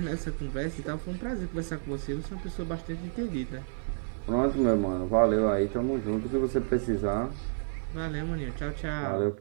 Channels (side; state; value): left; silent; 58 dB below the other